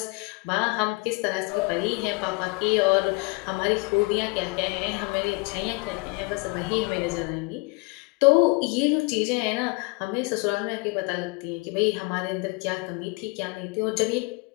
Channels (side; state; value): right; quieter; 28.6 dB